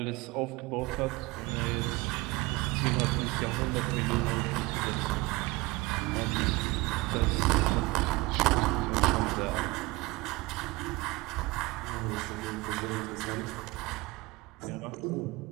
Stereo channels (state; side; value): quieter; left; 22.3 dB